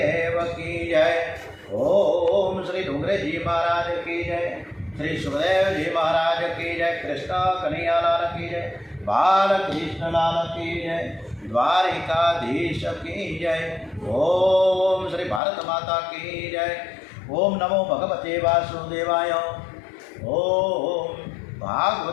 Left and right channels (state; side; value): drops out; right; at 15.4 s